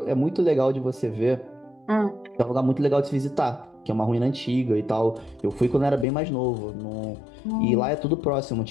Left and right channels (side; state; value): right; drops out; at 6.1 s